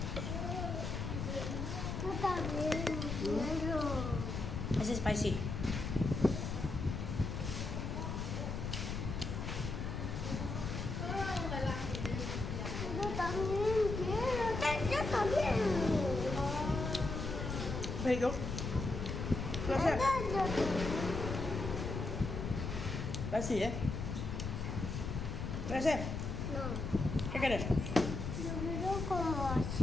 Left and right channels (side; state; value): left; noise; rumble, 4 dB below the sound